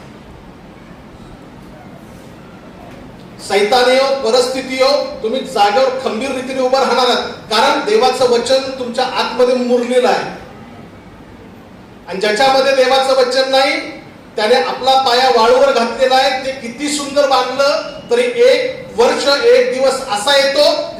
सैतानी हो, परिस्थिती हो, तुम्ही जागेवर खंबीर रीतीने उभं राहणार आहात, कारण देवाचं वचन तुमच्या आतमध्ये मुरलेलं आहे. आणि ज्याच्यामध्ये देवाचं वचन नाही त्याने आपला पाया वाळूवर घातलेला आहे. ते किती सुंदर बांधलं तरी एक वर्ष एक दिवस असा येतो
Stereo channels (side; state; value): both; identical; correlation 1.00